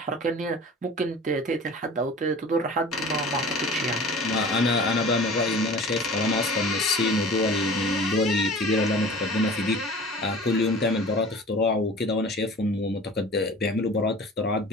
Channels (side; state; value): both; normal; correlation 0.41